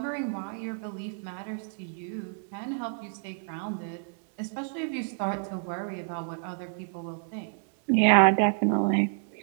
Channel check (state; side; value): silent; left; 57 dB below the other